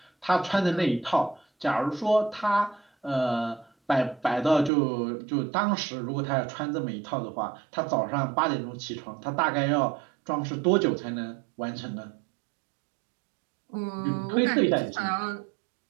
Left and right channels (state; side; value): drops out; left; at 4.7 s